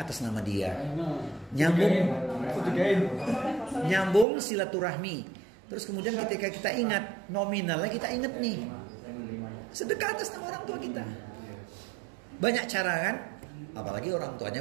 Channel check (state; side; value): drops out; left; at 4.2 s